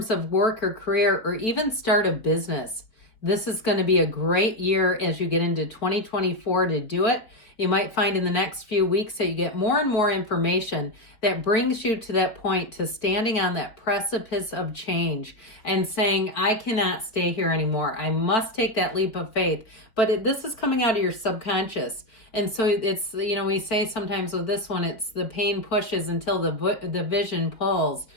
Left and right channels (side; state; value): right; late; 4.3 ms